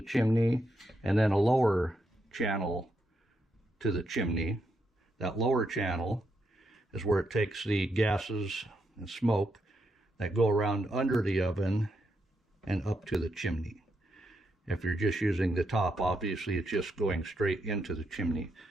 chimney and then a lower channel to the chimney. That lower channel is where it takes the gases and smoke that go around under the oven and up to the chimney. If you're just using the top, obviously it's just going straight into the chimney.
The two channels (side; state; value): both; normal; correlation 0.81